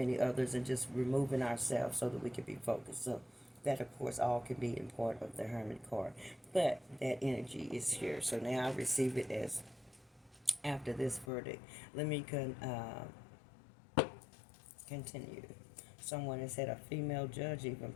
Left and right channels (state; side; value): drops out; right; at 11.3 s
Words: others, and just removing ourselves so that we can be focused. So that, of course, all can be in part of the Hermit card. But that energy is here. So now I receive it as after this verdict. Let me continue. Someone has had a female judge, even